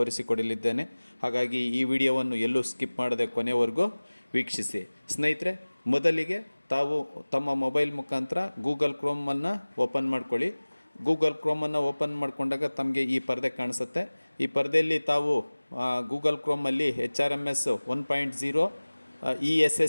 ಹಾಗಾಗಿ ಈ ವಿಡಿಯೋವನ್ನು ಎಲ್ಲೂ ಸ್ಕಿಪ್ ಮಾಡದೆ ಕೊನೆವರೆಗೂ ವೀಕ್ಷಿಸಿ. ಸ್ನೇಹಿತರೆ, ಮೊದಲಿಗೆ ತಾವು ತಮ್ಮ ಮೊಬೈಲ್ ಮುಖಾಂತರ ಗೂಗಲ್ ಕ್ರೋಮನ್ನು ಓಪನ್ ಮಾಡ್ಕೊಳ್ಳಿ. ಗೂಗಲ್ ಕ್ರೋಮನ್ನು ಓಪನ್ ಮಾಡಿಕೊಂಡಾಗ ತಮಗೆ ಈ ಪರದೆ ಕಾಣಿಸುತ್ತೆ. ಈ ಪರದೆಯಲ್ಲಿ ತಾವು ಗೂಗಲ್ ಕ್ರೋಮಲ್ಲಿ HRMS 1.0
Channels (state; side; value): inverted; both; correlation -1.00